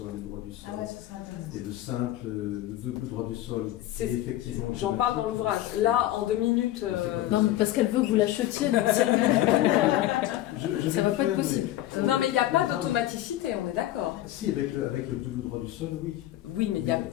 et le droit du sol. Et de simple, le double droit du sol. Effectivement. J'en parle dans l'ouvrage. Là, en 2 minutes. Non, mais parce qu'elle veut que vous l'achetiez, donc si elle veut ça va pas être possible. Non, mais il n'y a pas d'automaticité, on est d'accord. Si, avec le double droit du sol, oui. Oui, mais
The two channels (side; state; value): right; quieter; 14.4 dB